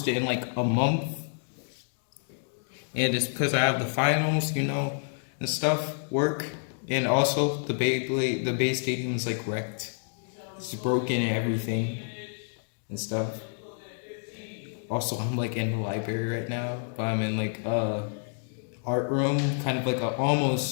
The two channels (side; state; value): right; silent; 59 dB below the other